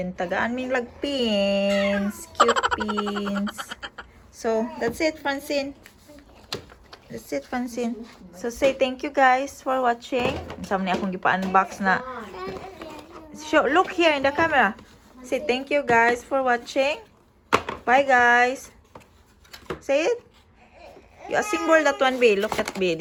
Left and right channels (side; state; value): both; identical; correlation 1.00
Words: tagaan min lag pins, cute pins. So, that's it Francine. That's it Francine. So say thank you guys for watching. Sama ni akong gipa-unbox na. Look here in the camera. Say thank you guys for watching. Bye guys. Say it. You assemble that one B. Look at B.